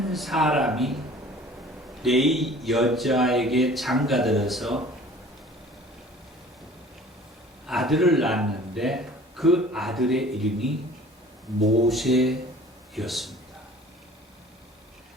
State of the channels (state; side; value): normal; both; correlation 0.48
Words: 사람이 레위 여자에게 장가들어서 아들을 낳았는데 그 아들의 이름이 모세였습니다.